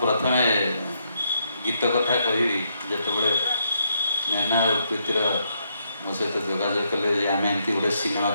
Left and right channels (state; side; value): inverted; both; correlation -0.76